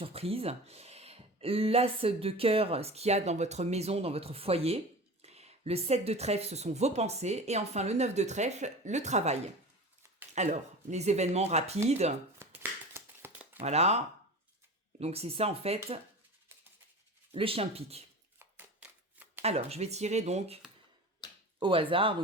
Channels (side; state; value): both; normal; correlation 0.33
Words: L'as de cœur, ce qu'il y a dans votre maison, dans votre foyer. Le 7 de trèfle, ce sont vos pensées. Et enfin, le 9 de trèfle, le travail. Alors, les événements rapides. Voilà. Donc, c'est ça, en fait, le chien de pique. Alors, je vais tirer donc au hasard.